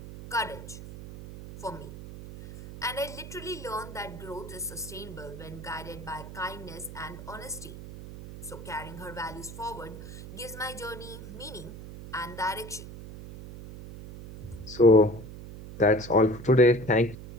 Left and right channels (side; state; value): right; noise; hum, 12 dB below the sound